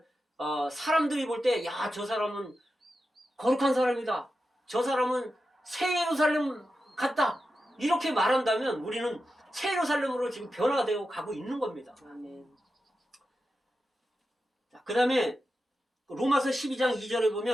사람들이 볼 때, 야, 저 사람은 거룩한 사람이다, 저 사람은 새 예루살렘 같다, 이렇게 말한다면 우리는 새 예루살렘으로 지금 변화되어 가고 있는 겁니다. 그 다음에 로마서 12장 2절에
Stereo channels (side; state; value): both; normal; correlation 0.90